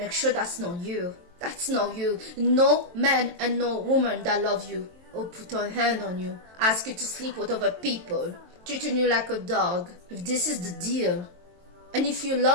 sure that's not you. That's not you. No man and no woman that love you or put a hand on you, ask you to sleep with other people, treating you like a dog. If this is the deal, and if you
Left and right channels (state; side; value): late; left; 23 ms